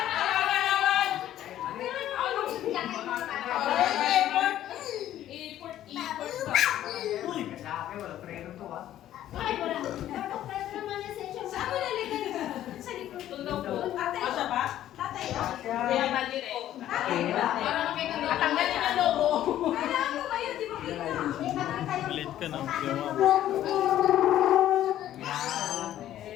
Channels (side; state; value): right; quieter; 12.4 dB